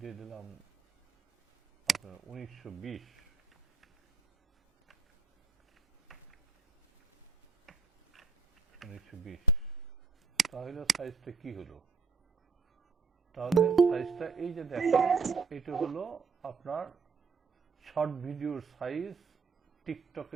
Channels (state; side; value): quieter; left; 4.7 dB